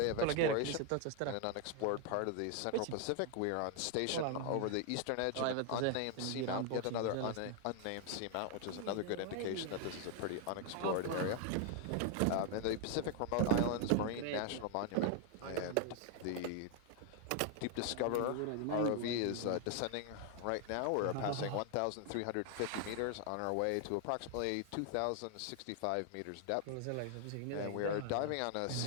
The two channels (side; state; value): both; different; correlation 0.00